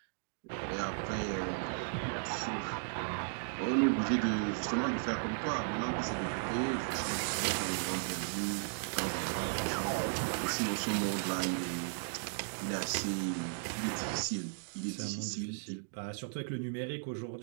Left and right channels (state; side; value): silent; left; digital silence